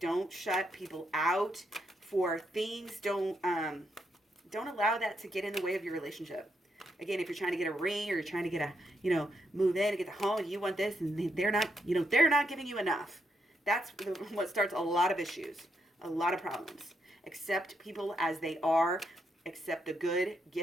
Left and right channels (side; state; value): both; normal; correlation 0.79